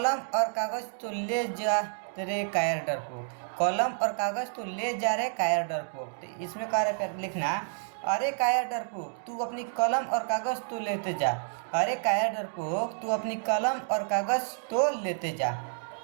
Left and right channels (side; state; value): left; silent; digital silence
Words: और कागज तो ले जा तेरे कायर डरपोक। कलम और कागज तो ले जा रहे कायर डरपोक। तो इसमें कह रहे प्यारे लिखना, अरे कायर डरपोक तू अपनी कलम और कागज तो लेते जा। अरे कायर डरपोक तू अपनी कलम और कागज तो लेते जा।